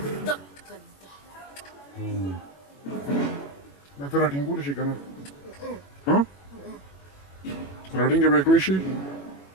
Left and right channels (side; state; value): right; late; 21 ms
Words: دا ته راټینګولی شي که نه راټینګه به یې کړی شي